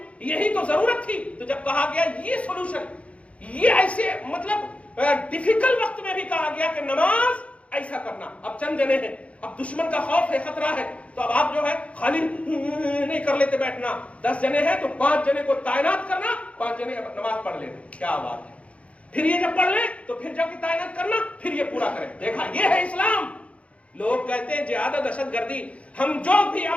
یہی تو ضرورت تھی۔ تو جب کہا گیا یہ سولوشن، یہ ایسے مطلب ڈیفیکلٹ وقت میں بھی کہا گیا کہ نماز ایسا کرنا۔ اب چند جنے ہیں، اب دشمن کا خوف ہے، خطرہ ہے، تو اب آپ جو ہے خالی نہیں کر لیتے بیٹھنا، 10 جنے ہیں تو 5 جنے کو تعینات کرنا، 5 جنے نماز پڑھ لینا، کیا بات ہے۔ پھر یہ جب پڑھ لیں تو پھر جب تعینات کرنا، پھر یہ پورا کریں۔ دیکھا، یہ ہے اسلام۔ لوگ کہتے ہیں جہاد و دہشت گردی، ہم جو بھی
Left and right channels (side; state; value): right; late; 0.063 ms